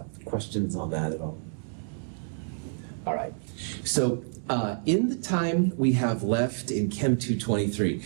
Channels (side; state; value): left; silent; digital silence